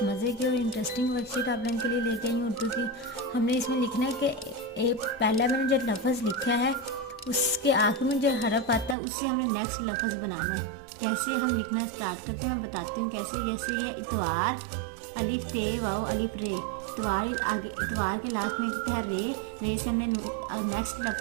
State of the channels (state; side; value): drops out; left; at 9.0 s